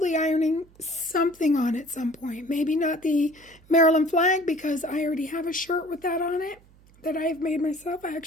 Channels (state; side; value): noise; right; hum, 27 dB below the sound